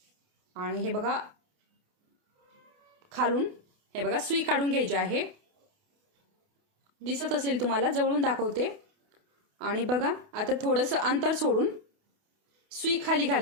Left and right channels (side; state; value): left; late; 28 ms